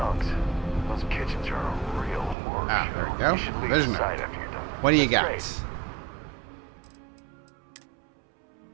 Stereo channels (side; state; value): left; drops out; at 2.4 s